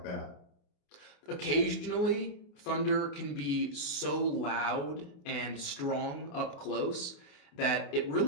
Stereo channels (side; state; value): right; late; 28 ms